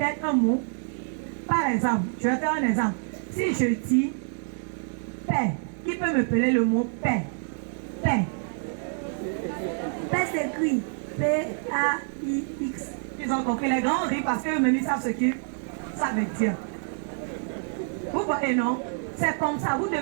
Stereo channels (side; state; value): left; silent; 59 dB below the other